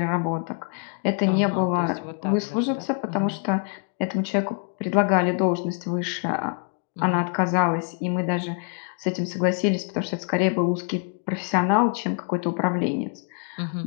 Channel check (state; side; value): quieter; right; 39.7 dB